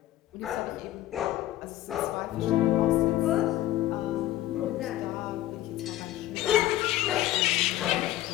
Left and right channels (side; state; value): right; quieter; 14.5 dB